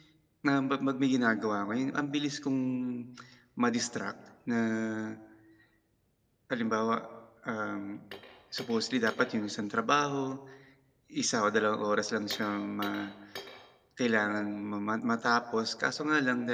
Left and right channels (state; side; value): identical; both; correlation 1.00